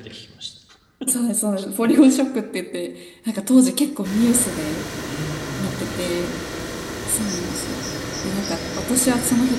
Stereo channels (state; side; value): identical; both; correlation 1.00